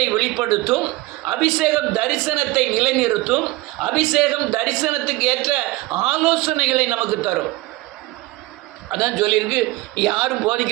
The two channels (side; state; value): left; quieter; 20.6 dB